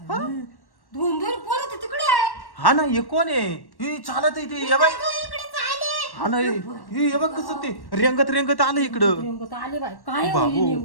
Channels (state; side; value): late; right; 1.1 ms